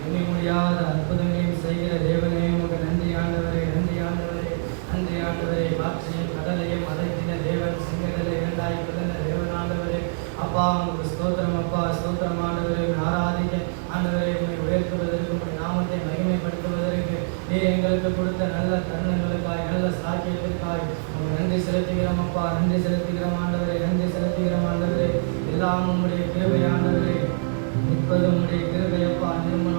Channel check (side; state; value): left; silent; digital silence